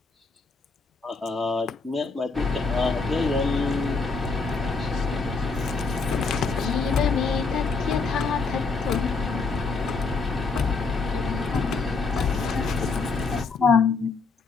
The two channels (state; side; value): quieter; right; 4.3 dB